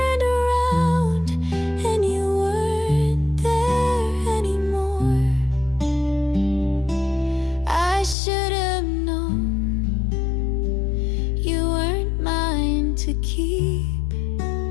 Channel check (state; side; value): drops out; right; at 8.2 s